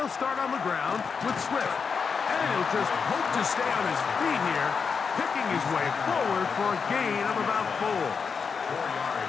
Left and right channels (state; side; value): quieter; right; 5.7 dB